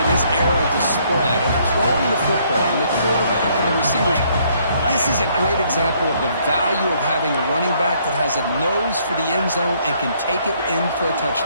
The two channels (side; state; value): both; inverted; correlation -0.67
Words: this era of the spread, of throwing the football, and the quarterback and the receivers. This is a great example of the value of having a running back that has a nose for the end zone and can take it in for a